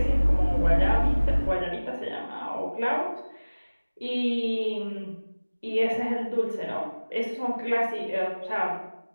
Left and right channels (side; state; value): both; inverted; correlation -1.00